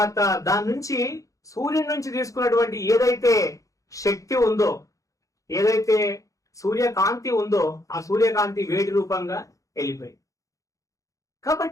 దాని నుంచి సూర్యుడి నుంచి తీసుకున్నటువంటి ఏదైతే శక్తి ఉందో, ఏదైతే సూర్యకాంతి ఉందో, ఆ సూర్యకాంతి వేడి రూపంగా వెళ్ళిపోయింది.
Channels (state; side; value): late; right; 0.16 ms